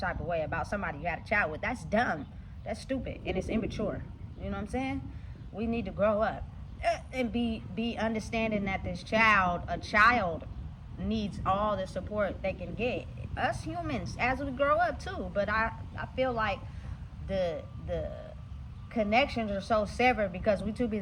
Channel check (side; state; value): both; identical; correlation 1.00